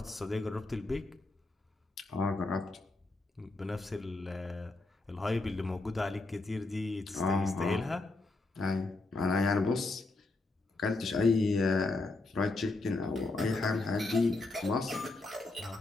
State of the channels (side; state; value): right; quieter; 3.2 dB